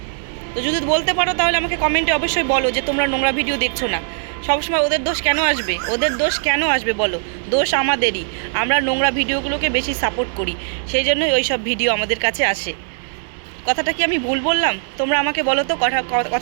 তো যদি বলতে পারো তাহলে আমাকে কমেন্টে অবশ্যই বলো যে তোমরা নোংরা ভিডিও দেখছো না। সবসময় ওদের দোষ কেন আসবে? বলো? দোষ আমাদেরই। আমরা নোংরা ভিডিওগুলোকে বেশি সাপোর্ট করি, সেই জন্যই ওই সব ভিডিও আমাদের কাছে আসে। কথাটা কি আমি ভুল বললাম? তোমরা আমাকে বলো তো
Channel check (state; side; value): silent; left; 66 dB below the other